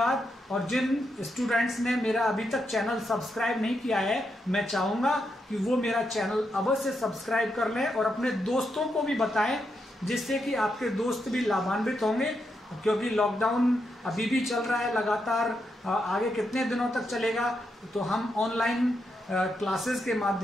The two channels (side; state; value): both; normal; correlation 0.83